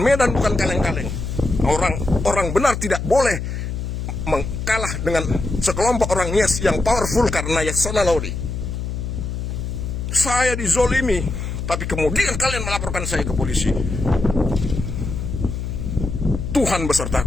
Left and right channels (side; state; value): left; noise; hum, 4 dB below the sound